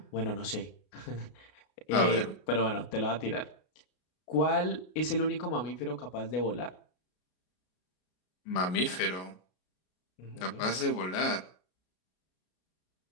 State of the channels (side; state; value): right; late; 33 ms